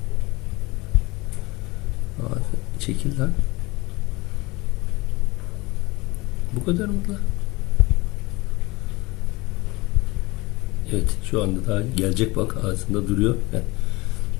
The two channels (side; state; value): right; quieter; 22.6 dB